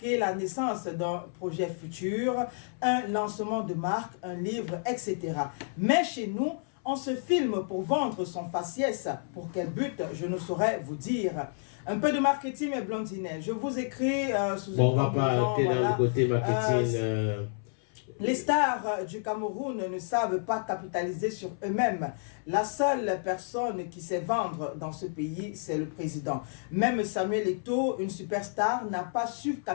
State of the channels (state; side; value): silent; right; 58 dB below the other